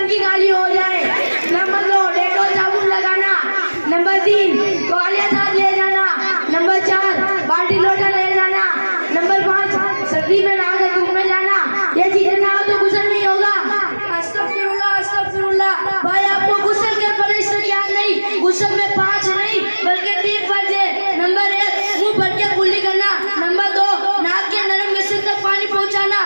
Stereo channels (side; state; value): both; inverted; correlation -1.00